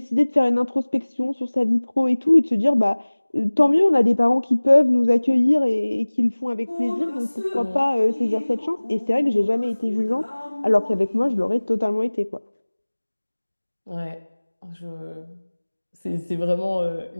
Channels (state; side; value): inverted; both; correlation -1.00